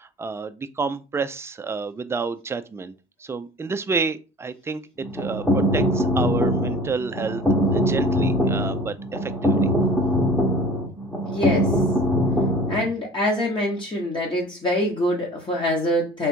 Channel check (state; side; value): normal; both; correlation 0.44